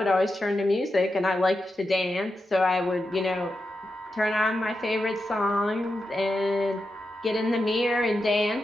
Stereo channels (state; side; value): normal; both; correlation 0.88